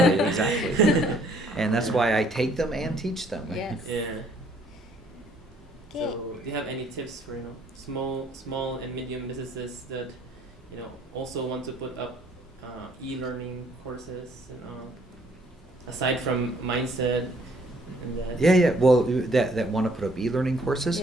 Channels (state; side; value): normal; both; correlation 0.63